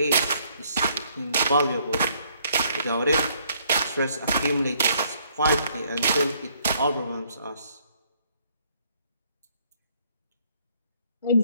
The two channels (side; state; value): both; inverted; correlation -0.66